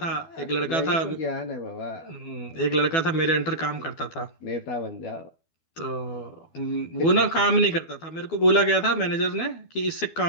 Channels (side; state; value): right; late; 12 ms